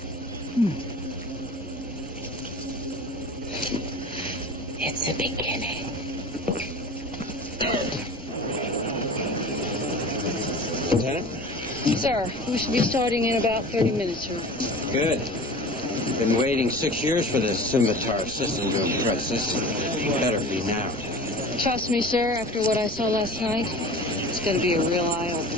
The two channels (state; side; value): normal; both; correlation 0.37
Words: It's a beginning. Lieutenant? Sir, we should be starting in about 30 minutes, sir. Good. Been waiting 6 years for this scimitar system to impress us. Better be now. Trust me, sir, after what I saw last night, it's going to be a real